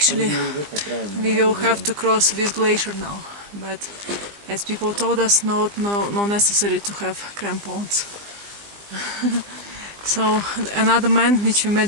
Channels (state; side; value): late; left; 20 ms